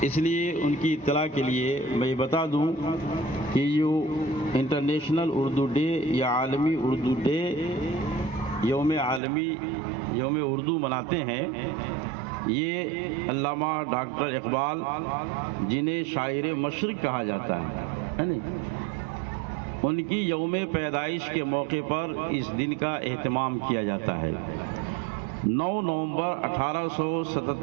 اس لیے ان کی اطلاع کے لیے میں بتا دوں کہ جو انٹرنیشنل اردو ڈے یا عالمی اردو ڈے یوم اردو مناتے ہیں، یہ علامہ ڈاکٹر اقبال جنہیں شاعر مشرق کہا جاتا ہے ان کی یوم پیدائش کے موقع پر اس دن کا اہتمام کیا جاتا ہے۔ 9 نومبر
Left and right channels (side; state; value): left; drops out; at 9.2 s